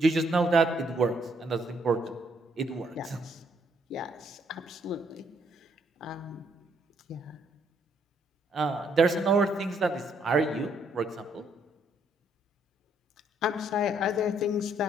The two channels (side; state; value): both; normal; correlation 0.70